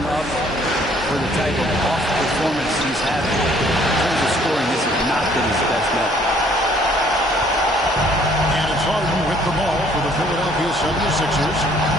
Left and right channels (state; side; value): normal; both; correlation 0.61